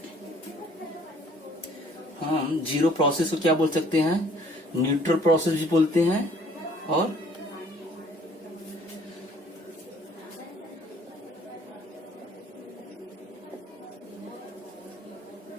हम जीरो प्रोसेस को क्या बोल सकते हैं, न्यूट्रल प्रोसेस भी बोलते हैं और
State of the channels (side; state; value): both; normal; correlation 0.58